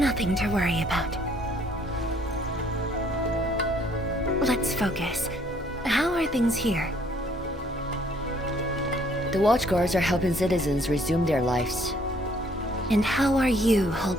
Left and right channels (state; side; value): normal; both; correlation 0.63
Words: to worry about. Let's focus. How are things here? The Watchguards are helping citizens resume their lives. And how are you